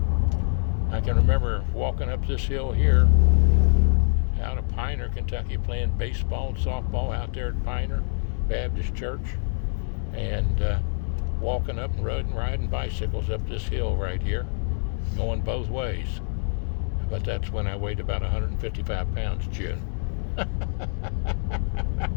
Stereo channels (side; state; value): right; silent; 61 dB below the other